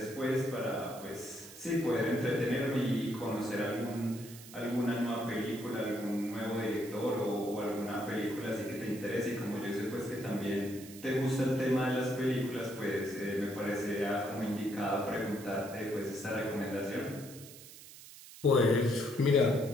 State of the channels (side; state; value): right; noise; hiss, 17 dB below the sound